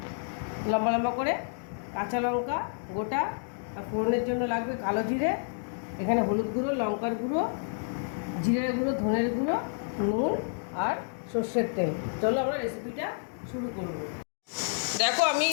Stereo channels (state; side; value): silent; right; digital silence